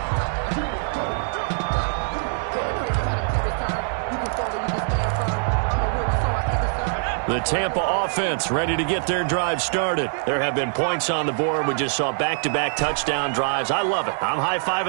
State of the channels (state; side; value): silent; left; 62 dB below the other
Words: The Tampa offense ready to get their drive started. There have been points on the board. We just saw back-to-back touchdown drives. I love it. I'm